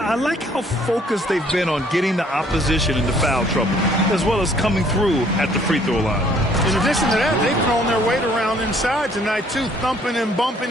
like how focused they've been on getting the opposition into foul trouble, as well as coming through at the free throw line. In addition to that, they've thrown their weight around inside tonight, too, thumping and bumping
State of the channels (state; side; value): normal; both; correlation 0.61